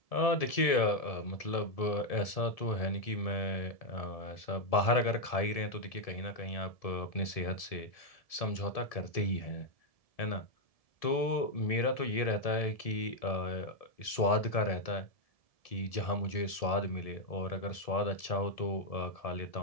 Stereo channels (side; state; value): right; late; 1.7 ms